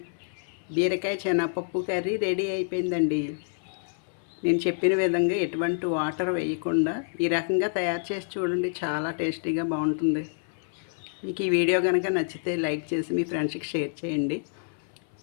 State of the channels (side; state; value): right; silent; 60 dB below the other